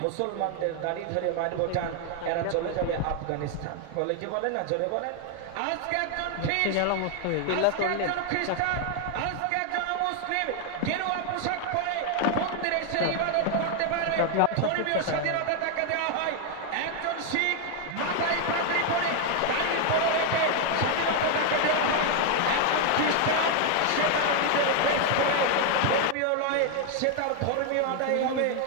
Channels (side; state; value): both; different; correlation 0.00